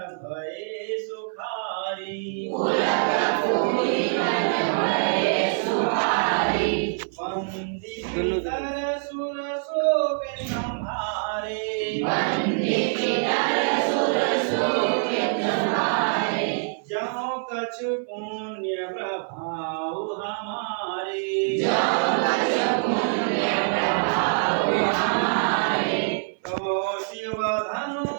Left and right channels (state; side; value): silent; left; 59 dB below the other